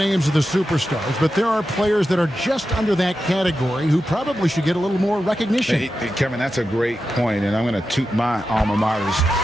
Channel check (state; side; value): normal; both; correlation 0.90